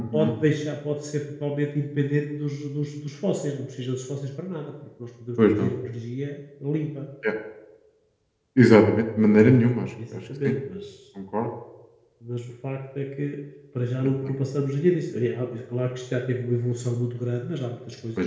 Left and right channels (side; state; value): both; identical; correlation 1.00